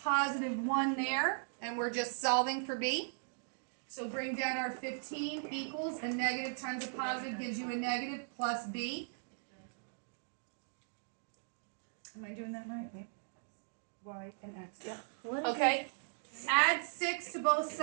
positive 1 there. And we're just solving for b. So bring down our 15 equals a negative times a positive gives you a negative plus b. Am I doing that right? Wait. Y and x, yeah. Okay, add 6 to both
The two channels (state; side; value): silent; left; digital silence